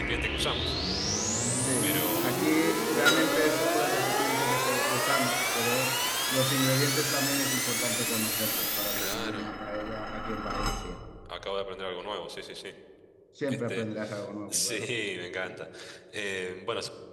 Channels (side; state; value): both; identical; correlation 1.00